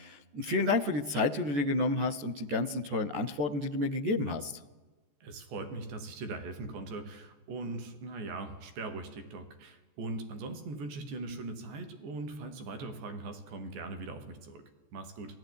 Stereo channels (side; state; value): left; late; 14 ms